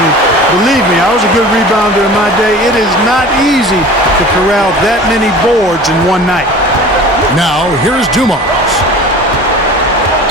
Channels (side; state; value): both; normal; correlation 0.40